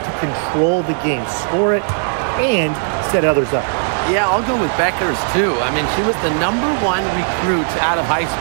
control the game, score it, and set others up. Yeah, I'll go with Beckers, too. I mean, she was the #1 recruit out of high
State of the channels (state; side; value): silent; left; 68 dB below the other